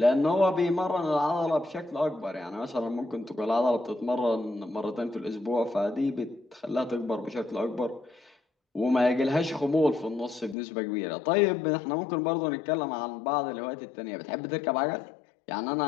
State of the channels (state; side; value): drops out; right; at 10.6 s